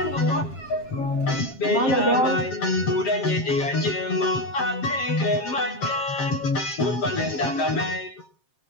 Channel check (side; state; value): right; late; 7.5 ms